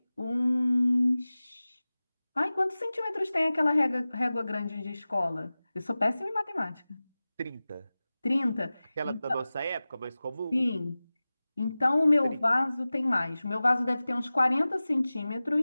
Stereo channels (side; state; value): both; inverted; correlation -0.97